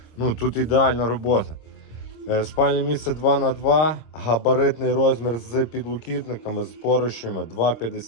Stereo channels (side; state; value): right; late; 26 ms